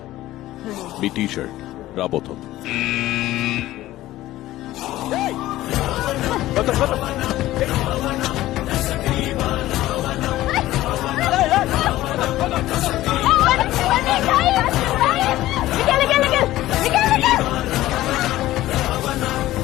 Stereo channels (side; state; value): right; quieter; 15.7 dB